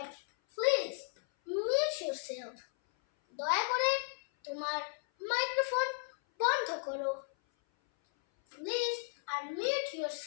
Please mute yourself. দয়া করে তোমার মাইক্রোফোন বন্ধ করো। Please unmute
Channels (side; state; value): right; silent; 55 dB below the other